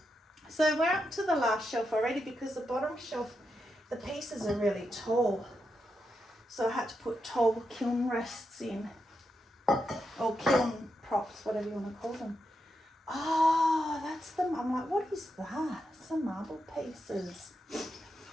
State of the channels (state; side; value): normal; both; correlation 0.85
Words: So we're up to the last shelf already because the bottom shelf, the pieces are really tall. So I had to put tall kiln rests in, or kiln props, whatever you want to call them. Oh, that's them. I'm like, what is that? Some marble pieces.